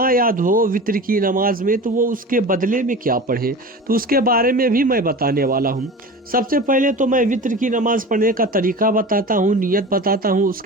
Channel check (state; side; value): normal; both; correlation 0.34